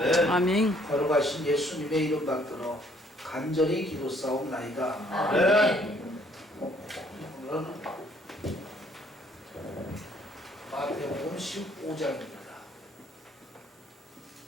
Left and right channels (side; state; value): both; normal; correlation 0.63